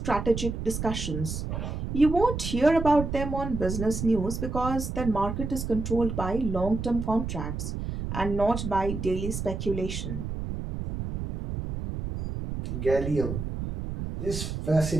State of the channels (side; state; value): right; noise; rumble, 5 dB below the sound